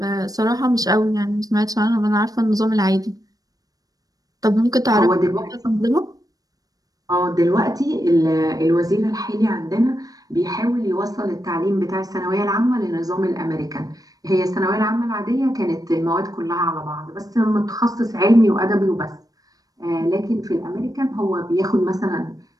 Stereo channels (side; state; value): left; late; 0.18 ms